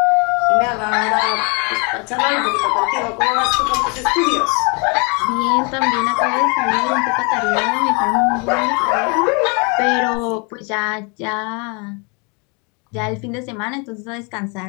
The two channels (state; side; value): quieter; right; 33.0 dB